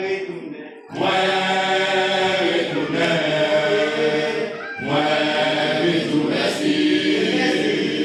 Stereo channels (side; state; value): both; identical; correlation 1.00